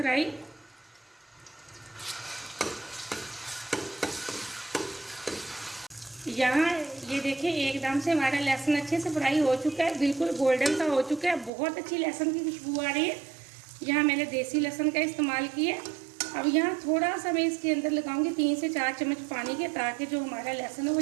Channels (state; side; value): drops out; left; at 11.5 s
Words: यहाँ ये देखिए एकदम से हमारा लहसुन अच्छे से फ्राई हो चुका है, बिल्कुल गोल्डन सा हो चुका है। बहुत अच्छी लहसुन की खुशबू आ रही है। यहाँ मैंने देसी लहसुन का इस्तेमाल किया। अब यहाँ थोड़ा सा मैं इसके अंदर लगाऊंगी 3 से 4 चम्मच पानी के, ताकि जो हमारा लहसुन है वो